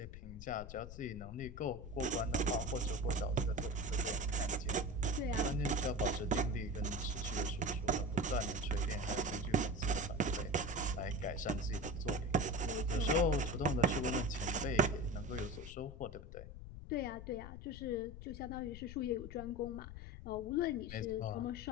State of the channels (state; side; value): noise; left; rumble, 11 dB below the sound